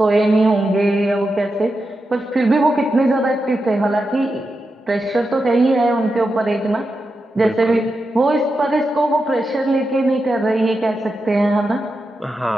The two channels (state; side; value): normal; both; correlation 0.88